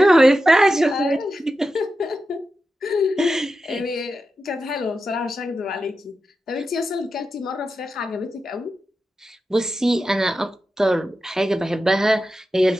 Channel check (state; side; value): normal; both; correlation 0.90